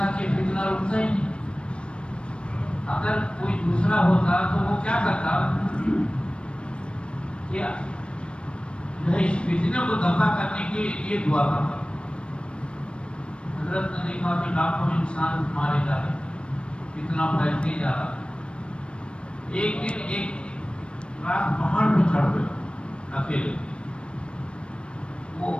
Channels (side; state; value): right; late; 0.058 ms